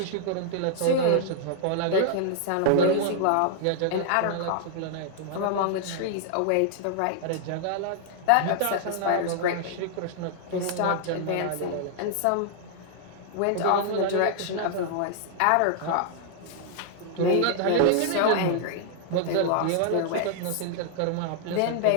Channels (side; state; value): both; different; correlation -0.01